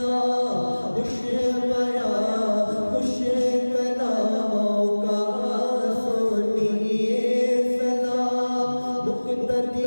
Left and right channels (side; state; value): both; inverted; correlation -1.00